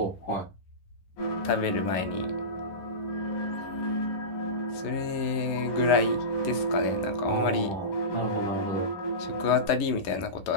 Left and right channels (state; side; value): late; right; 11 ms